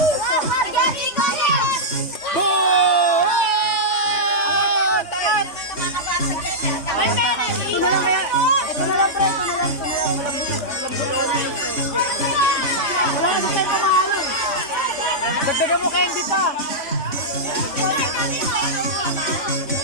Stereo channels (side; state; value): right; late; 3.5 ms